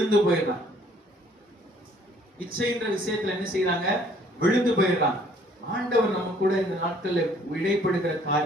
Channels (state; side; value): normal; both; correlation 0.60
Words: போயிடுறாங்க. இச்சைன்ற விஷயத்துல என்ன செய்யறாங்க? விழுந்து போயிடுறாங்க. ஆண்டவர் நம்ம கூட இந்த நாட்கள்ல இடைப்படுகிற